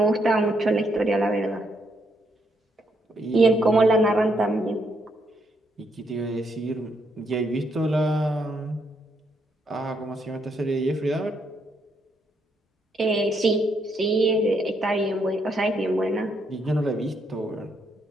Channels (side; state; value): both; normal; correlation 0.75